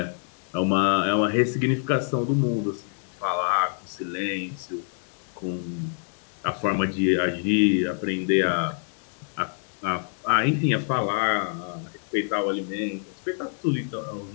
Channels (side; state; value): right; silent; 61 dB below the other